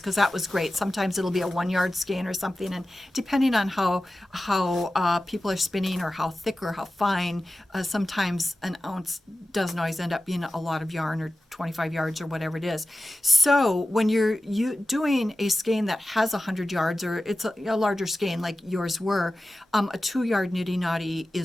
that was great. Sometimes it'll be a 1-yard skein or something, and depending on how people are spinning or how thick or how fine, sometimes an ounce doesn't always end up being a lot of yarn, or 25 yards or whatever it is. So when you're doing a skein that has 100 yards, or it's a larger skein like yours were, a 2-yard niddy knotty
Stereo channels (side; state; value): both; normal; correlation 0.94